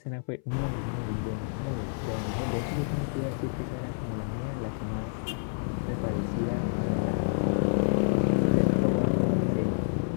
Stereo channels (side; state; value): right; silent; 57 dB below the other